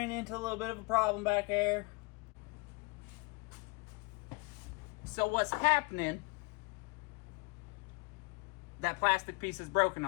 into a little bit of a problem back there. So what's happening, that plastic piece is broken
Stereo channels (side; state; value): right; quieter; 28.7 dB